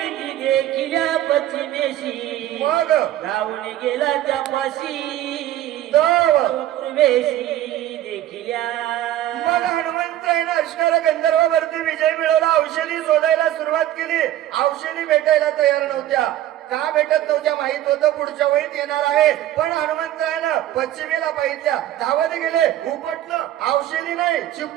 देखिल्या पश्चिमेशी मग धावून गेला त्यापाशी दाव. पूर्वेशी देखिल्या मग हनुमंतरायनं असणाऱ्या गंधर्वावरती विजय मिळवला औषधी शोधायला सुरुवात केली औषधी भेटायला तयार नव्हत्या का भेटत नव्हत्या माहित होतं पुढच्या वेळीत येणार आहे पण हनुमंतरायनं पश्चिमेला पाहितल्या धावत गेले उपटलं औषधी नाही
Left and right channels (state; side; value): quieter; left; 13.1 dB